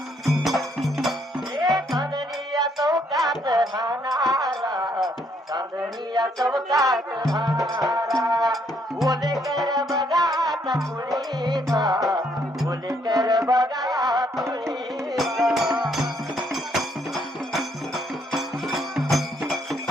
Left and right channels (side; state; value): both; normal; correlation 0.70